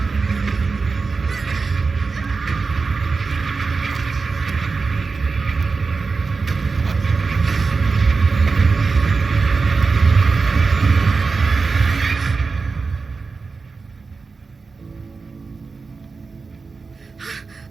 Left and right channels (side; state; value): left; quieter; 4.5 dB